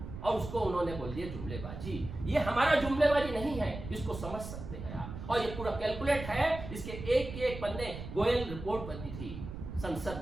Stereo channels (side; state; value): right; noise; rumble, 9 dB below the sound